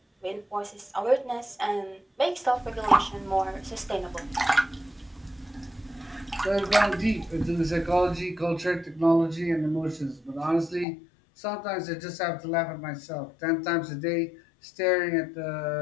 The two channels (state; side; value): drops out; right; at 10.9 s